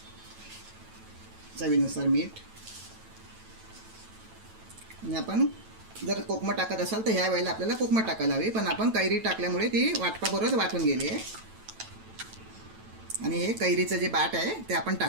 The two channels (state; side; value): late; left; 9.1 ms